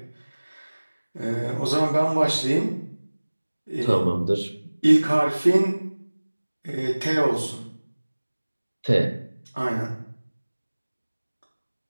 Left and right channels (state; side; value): inverted; both; correlation -1.00